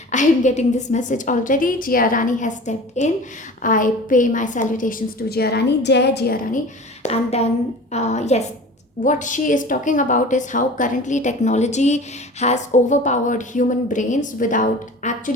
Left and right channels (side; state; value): both; normal; correlation 0.39